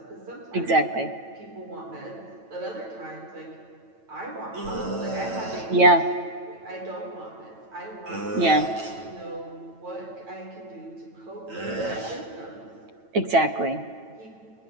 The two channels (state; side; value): late; left; 9.0 ms